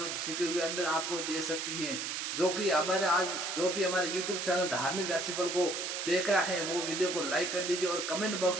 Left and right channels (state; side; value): noise; right; hiss, 3 dB below the sound